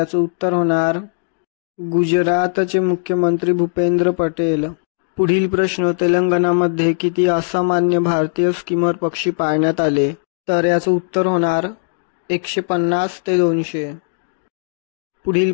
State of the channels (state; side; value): silent; right; digital silence